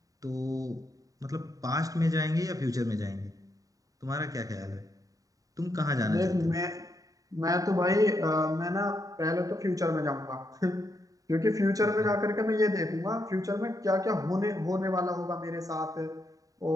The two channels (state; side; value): late; left; 0.17 ms